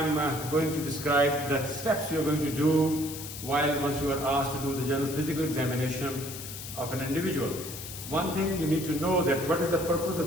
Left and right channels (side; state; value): left; noise; hiss, 10 dB below the sound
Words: going to describe the steps you are going to do once you are asked to do the general physical examination of an individual. One thing you need to know that what is the purpose